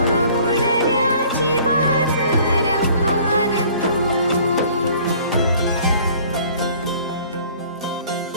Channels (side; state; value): both; inverted; correlation -0.53